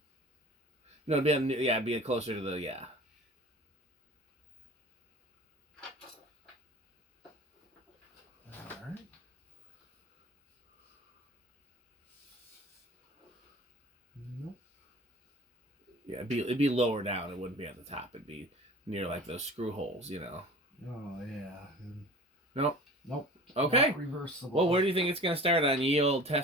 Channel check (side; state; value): both; normal; correlation 0.40